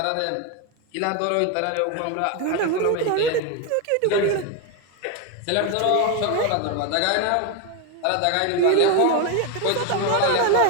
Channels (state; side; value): different; both; correlation 0.02